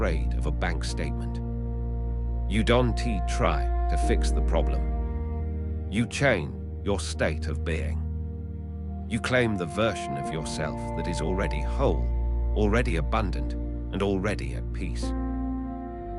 of a bank statement. You don't try to fix the problem. You change your state of being. You claim the version of yourself that is already whole, already abundant, and already at peace.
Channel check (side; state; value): both; identical; correlation 1.00